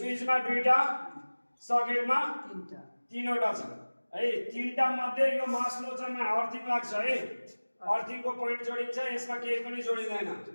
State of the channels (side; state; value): both; inverted; correlation -1.00